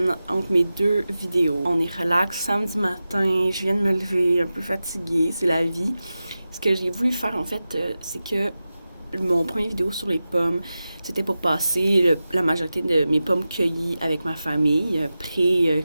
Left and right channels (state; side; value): inverted; both; correlation -0.94